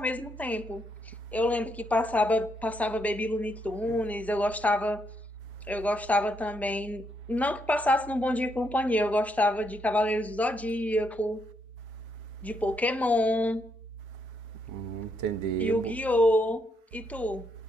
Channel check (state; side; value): normal; both; correlation 0.76